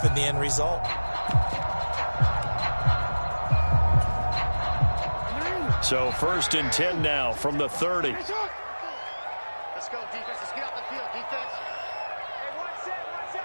the end result. So 1st and 10 now from the 30. Let's go, defense. Let's get out the field, defense. Hey, one set.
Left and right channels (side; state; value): both; inverted; correlation -1.00